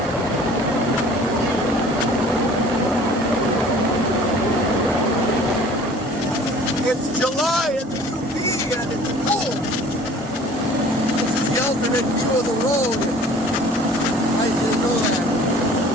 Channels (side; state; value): both; normal; correlation 0.49